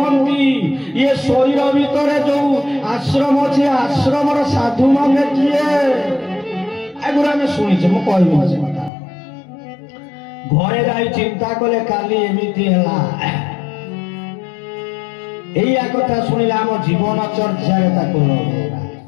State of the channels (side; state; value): right; drops out; at 8.9 s